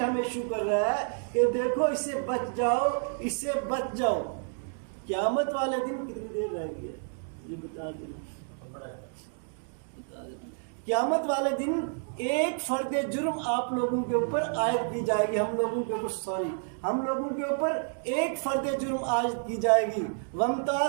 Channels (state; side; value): silent; left; 58 dB below the other